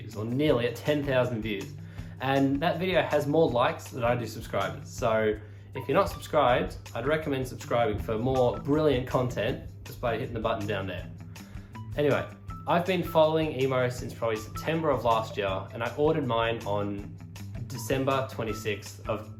or nearly at 10,000 views. And that video has more likes than I do subscribers. So if you're not subscribed, I'd recommend subscribing for more brilliant content just by hitting the button down there. Anyway, I've been following emo since probably September of last year, and I ordered mine on December 26th of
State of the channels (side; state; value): both; identical; correlation 1.00